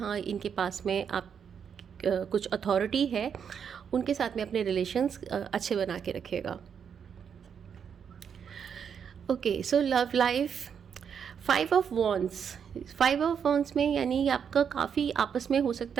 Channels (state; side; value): quieter; left; 7.4 dB